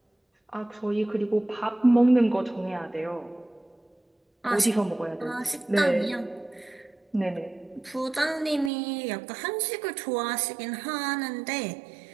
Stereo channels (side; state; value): left; drops out; at 8.7 s